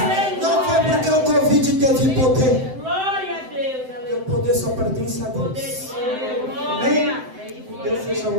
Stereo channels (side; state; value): left; late; 7.8 ms